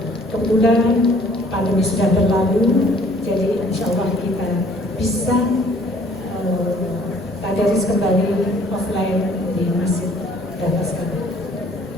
Kebetulan pandemi sudah berlalu, jadi insya Allah kita bisa tadarus kembali offline di Masjid Darul Azkar.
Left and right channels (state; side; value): normal; both; correlation 0.58